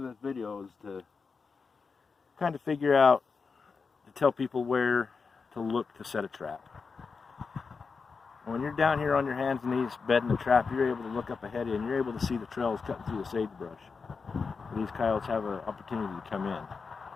this video is to kind of figure out, to tell people where to look to set a trap. When you're down here on your hands and knees bedding the trap, you're able to look up ahead of you and you're able to see the trails cutting through the sagebrush. These coyotes have an opportunity to come in.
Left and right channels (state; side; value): quieter; right; 5.0 dB